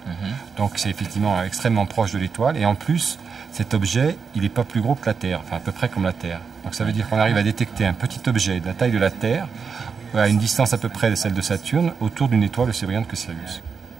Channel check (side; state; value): left; quieter; 5.7 dB